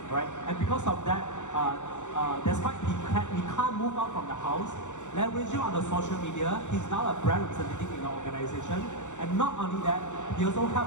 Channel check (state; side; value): late; right; 0.85 ms